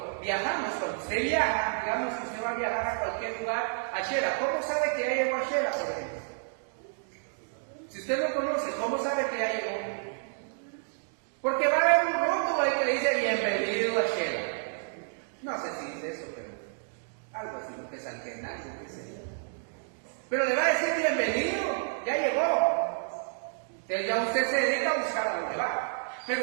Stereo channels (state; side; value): silent; left; digital silence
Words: viajamos, cuando usted viaja, digamos que usted va a viajar a cualquier lugar, a Shela, ¿cómo sabe que ya llegó a Shela, por ejemplo? Si usted no conoce, ¿cómo sabe que ya llegó? Porque va a haber un rótulo ahí que le dice bienvenido a Shela. No sé si dice eso, pero algo así, lo que es algo que sería. Pero le va a decir bienvenido, ya llegó. Entonces ya usted se dedica a buscar a dónde va. Pero